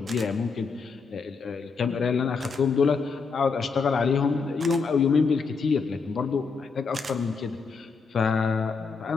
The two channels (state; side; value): quieter; right; 5.0 dB